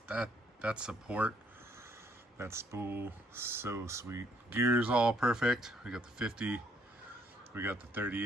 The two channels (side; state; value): both; normal; correlation 0.67